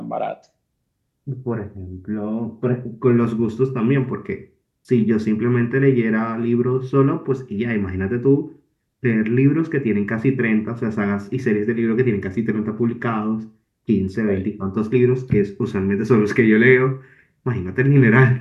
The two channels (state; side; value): identical; both; correlation 1.00